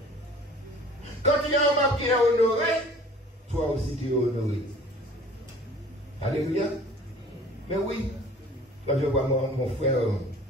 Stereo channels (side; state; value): both; normal; correlation 0.48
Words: Quand il y a un membre qui est honoré, toi aussi tu es honoré. Alléluia. Mais oui, quand je vois mon frère